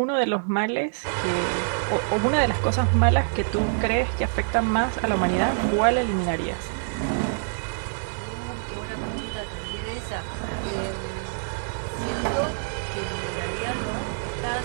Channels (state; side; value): silent; left; digital silence